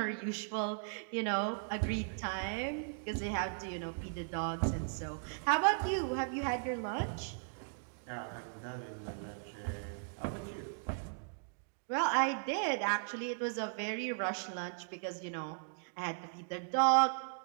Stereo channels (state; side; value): silent; left; digital silence